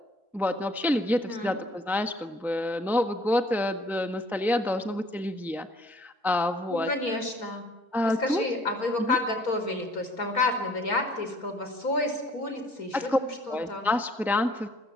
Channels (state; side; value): normal; both; correlation 0.59